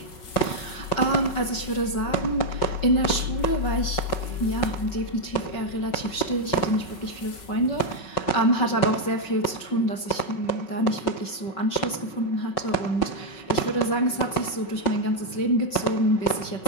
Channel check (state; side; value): late; right; 5.4 ms